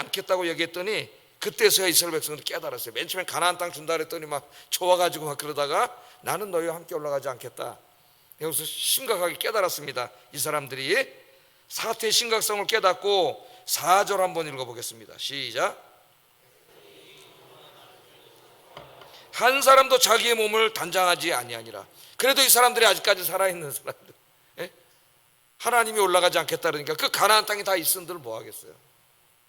얘기했더니, 그때서야 이스라엘 백성들이 깨달았어요. 맨 처음에 가나안 땅 준다 그랬더니 막 좋아가지고 막 그러다가 나는 너희와 함께 올라가지 않겠다. 여기서 심각하게 깨달았습니다. 이 사람들이 사태의 심각성을 깨닫고 4절 한번 읽어보겠습니다. 시작. 한 사람도 자기의 몸을 단장하지 아니하니라. 그래도 이 사람들이 아직까지 살아있는 사람들, 예? 하나님이 올라가지 않겠다 그러니까 그 가나안 땅에 다 있은들 뭐 하겠어요.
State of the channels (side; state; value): both; identical; correlation 1.00